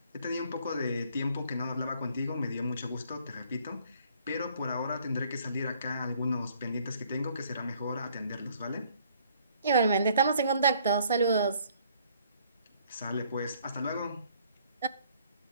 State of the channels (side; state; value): both; inverted; correlation -0.62